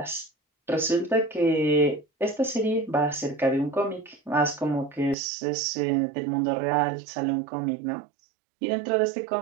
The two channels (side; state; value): left; drops out; at 5.2 s